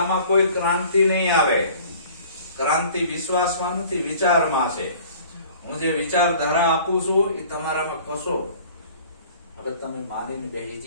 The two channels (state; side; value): inverted; both; correlation -0.49